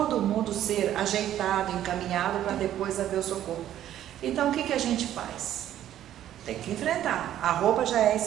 mundo ser ajeitado, encaminhado para depois haver o socorro. Então o que a gente faz? Tem que enfrentar. A roupa já é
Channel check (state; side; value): quieter; left; 11.8 dB